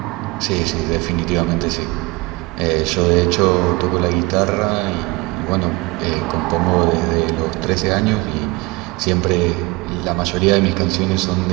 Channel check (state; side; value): quieter; left; 23.8 dB